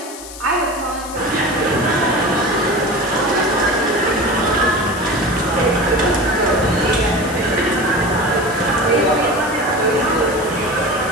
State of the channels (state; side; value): noise; left; hiss, 14 dB below the sound